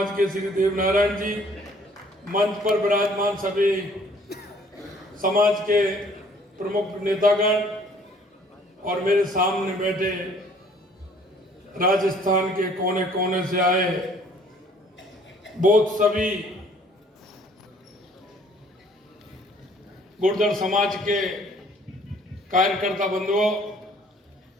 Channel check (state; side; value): normal; both; correlation 0.58